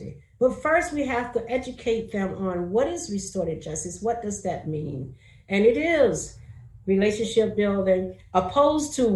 But first we have to educate them on what is restorative justice, what does that mean? And it is relationship building, opposed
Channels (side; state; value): both; identical; correlation 1.00